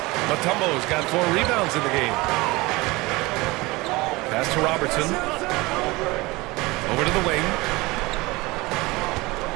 Mutombo's got 4 rebounds in the game. Pass to Robertson. Over to the wing.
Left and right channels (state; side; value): quieter; left; 22.3 dB